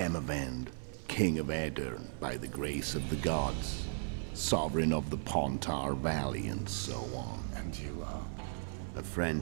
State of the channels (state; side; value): silent; left; 54 dB below the other